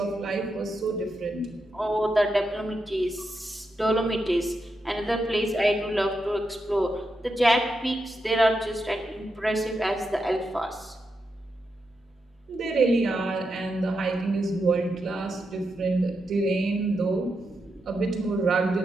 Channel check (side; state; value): both; normal; correlation 0.85